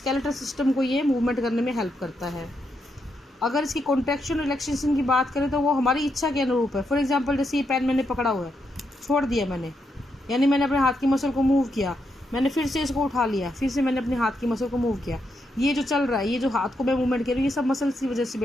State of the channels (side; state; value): both; normal; correlation 0.81